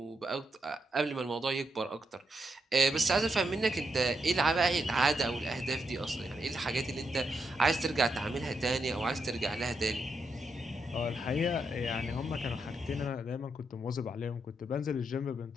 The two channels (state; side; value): normal; both; correlation 0.82